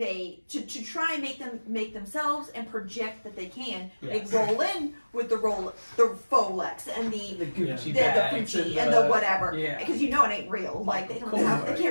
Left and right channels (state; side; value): inverted; both; correlation -1.00